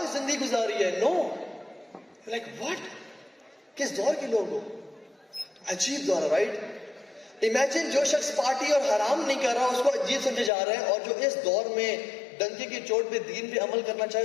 زندگی گزاری ہے. No. Like what? کس دور کے لوگ ہو, عجیب دور ہے, رائٹ. امیجن جو شخص پارٹی اور حرام نہیں کر رہا اس کو عجیب سمجھا جا رہا ہے, اور جو اس دور میں ڈنکے کی چوٹ پہ دین پہ عمل کرنا چاہے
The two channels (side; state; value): right; drops out; at 10.5 s